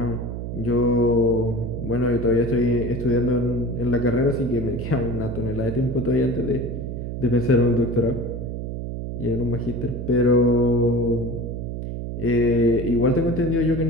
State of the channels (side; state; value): right; noise; hum, 6 dB below the sound